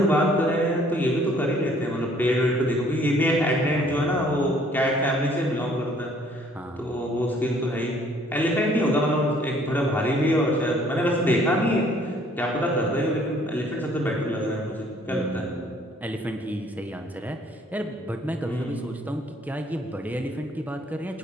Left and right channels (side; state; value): both; normal; correlation 0.60